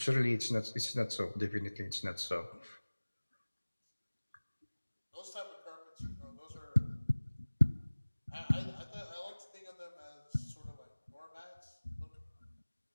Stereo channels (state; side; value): inverted; both; correlation -1.00